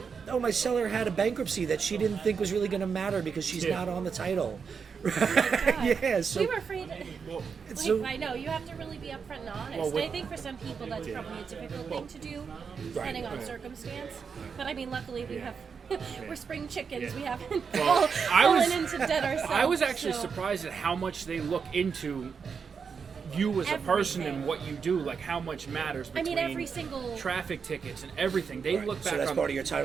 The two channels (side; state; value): left; quieter; 6.0 dB